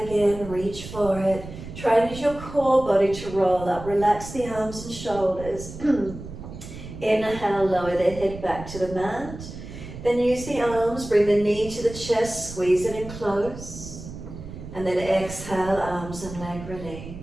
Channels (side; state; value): right; noise; rumble, 12 dB below the sound